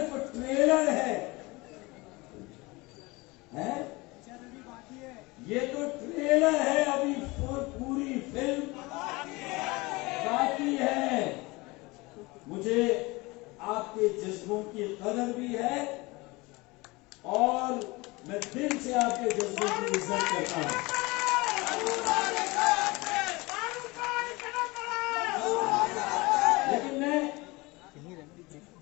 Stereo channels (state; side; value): quieter; right; 23.5 dB